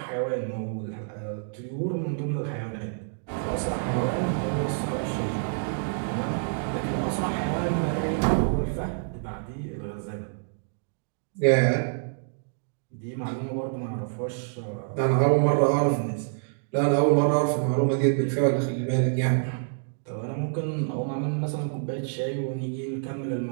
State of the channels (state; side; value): silent; left; digital silence